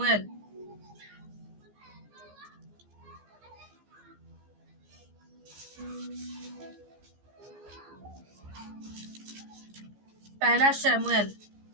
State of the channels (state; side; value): late; left; 15 ms